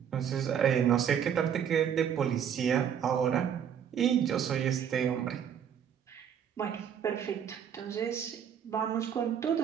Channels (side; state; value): left; quieter; 8.5 dB